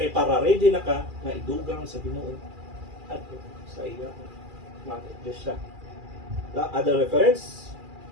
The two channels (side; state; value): left; late; 2.4 ms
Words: Kay para ready na ka nga idugang sa Ginoo at sa iya mga iglesia. Other reference,